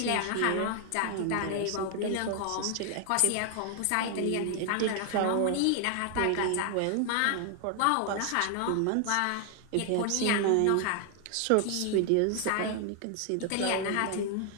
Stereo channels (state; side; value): different; both; correlation 0.00